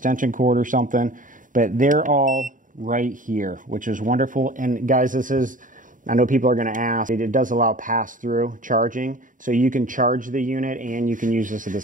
cord or something, but they're all right here, which is wonderful. And guys, this is, I know people are going to ask, it does allow pass-through charging, so you can charge the unit and you can use this at the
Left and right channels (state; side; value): late; left; 0.38 ms